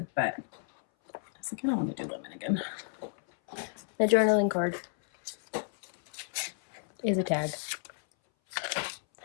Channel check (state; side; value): silent; right; 57 dB below the other